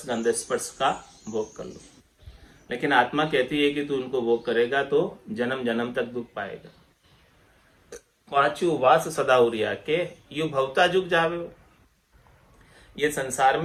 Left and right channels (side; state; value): both; identical; correlation 1.00